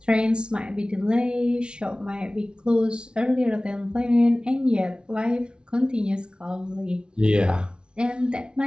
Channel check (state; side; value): late; left; 0.056 ms